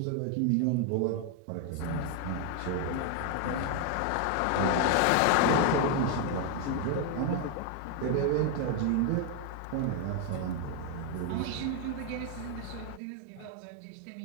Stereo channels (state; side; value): different; both; correlation 0.01